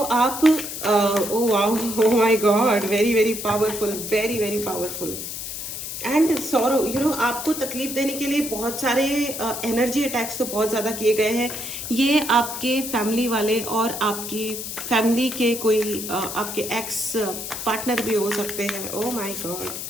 oh wow, oh my God, very very powerful, very very powerful. And sorrow, you know, आपको तकलीफ देने के लिए बहुत सारे एनर्जी अटैक्स तो बहुत ज़्यादा किए गए हैं। ये आपके फैमिली वाले और आपकी फैमिली के कोई आपके एक्स पार्टनर भी हो सकते हैं। ओ माय गॉड,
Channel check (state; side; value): noise; left; hiss, 7 dB below the sound